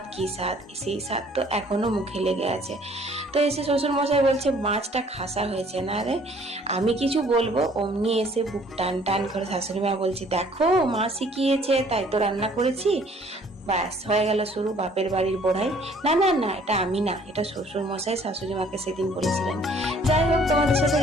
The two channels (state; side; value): normal; both; correlation 0.58